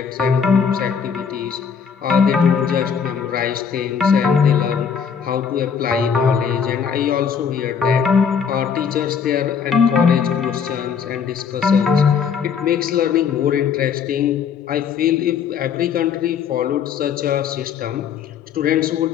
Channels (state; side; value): quieter; right; 6.9 dB